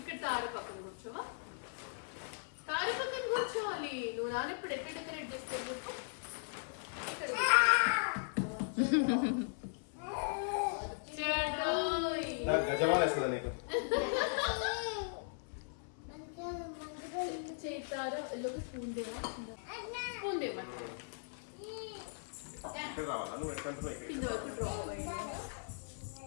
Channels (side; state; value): right; silent; 52 dB below the other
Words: తార పక్కన కూర్చోవా? తార పక్కన కూర్చోవాలి. నువ్వు నాన్న ఇప్పుడు ఎక్కడ డెకరేట్ చేస్తావు చెప్పు. ఇక్కడ చేతారా లోకి స్పూన్ దేవా? స్పూన్ దేవా కింద వరకు డ్రాప్ అయ్యింది.